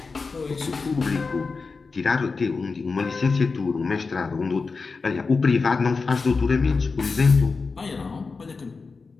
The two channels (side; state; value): right; quieter; 4.4 dB